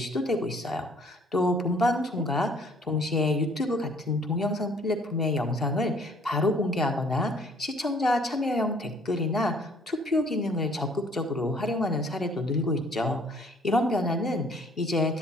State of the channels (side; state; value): both; normal; correlation 0.59